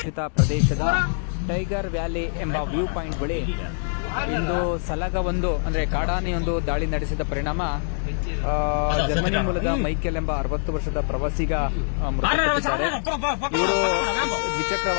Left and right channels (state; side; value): silent; right; digital silence